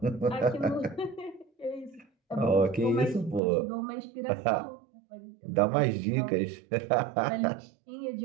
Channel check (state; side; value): drops out; left; at 3.4 s